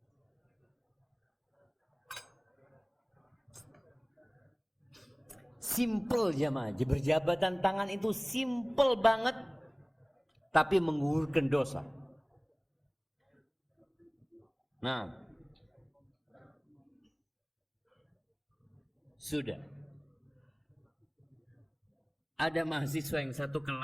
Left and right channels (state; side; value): identical; both; correlation 1.00